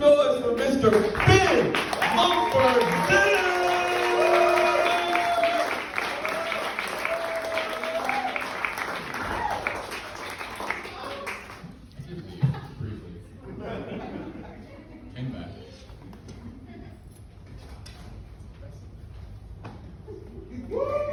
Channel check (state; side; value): identical; both; correlation 1.00